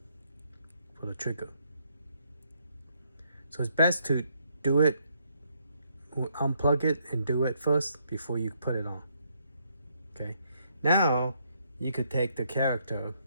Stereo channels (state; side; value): inverted; both; correlation -0.73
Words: for the trigger. So it's best to do it, unplug it and do it first before you put it on. Okay, now you could take the character